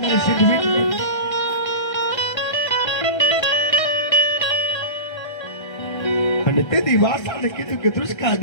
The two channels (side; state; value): right; late; 1.3 ms